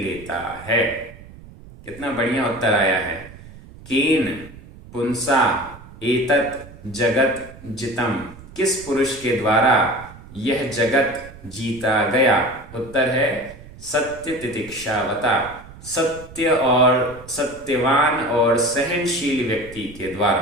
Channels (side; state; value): right; noise; rumble, 18 dB below the sound